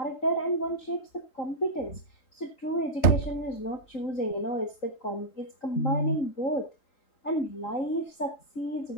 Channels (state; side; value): late; right; 3.4 ms